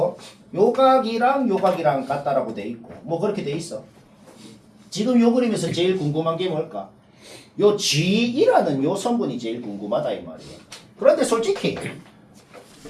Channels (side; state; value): both; identical; correlation 1.00